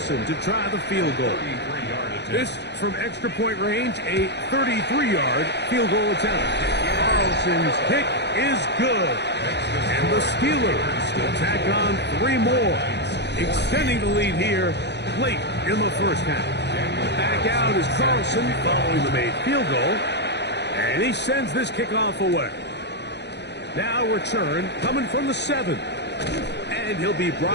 to try the field goal. This from extra point range, a 33-yard field goal attempt. Carlson's kick is good. And the Steelers will tack on 3 more, extending the lead here late in the first half. Back out is Carlson following the made field goal. And he sends this kickoff away. Now return coming from the 7. And he'll be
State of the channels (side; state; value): right; late; 0.50 ms